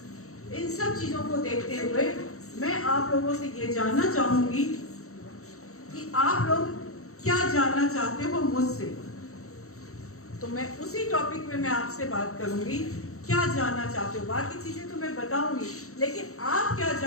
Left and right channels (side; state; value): right; late; 0.64 ms